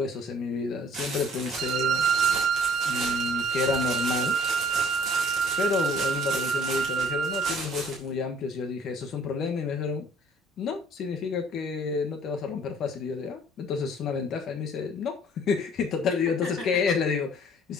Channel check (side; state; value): both; normal; correlation 0.55